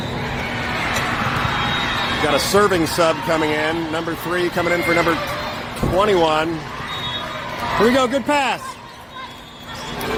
Got a serving sub coming in. Number 3 coming in for number 21. Here we go. Good pass.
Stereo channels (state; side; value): identical; both; correlation 1.00